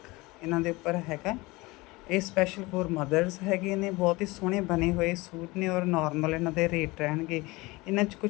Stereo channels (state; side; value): quieter; right; 22.4 dB